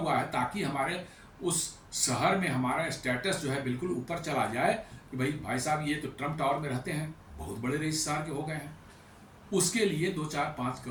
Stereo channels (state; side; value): identical; both; correlation 1.00